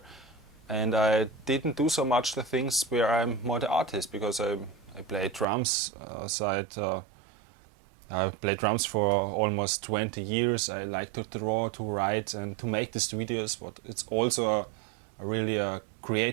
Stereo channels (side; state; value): left; drops out; at 5.5 s